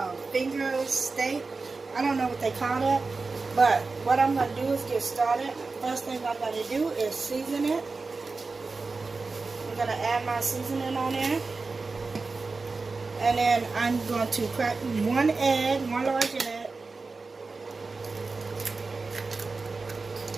finger steak. I don't know what they call that. But what I'm gonna do is get started. First thing I'm gonna do is season it. I'm gonna add my seasoning on there. And then I'm going to crack one large egg.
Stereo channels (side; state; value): left; quieter; 4.0 dB